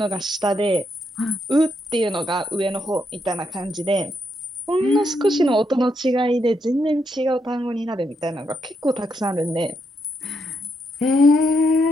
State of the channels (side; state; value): both; normal; correlation 0.79